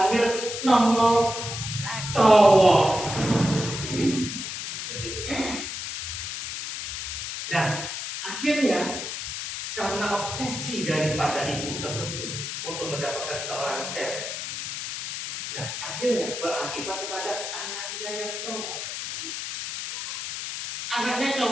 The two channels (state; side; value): noise; left; hiss, 6 dB below the sound